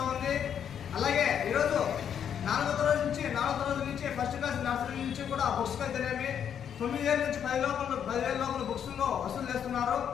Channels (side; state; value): right; quieter; 8.6 dB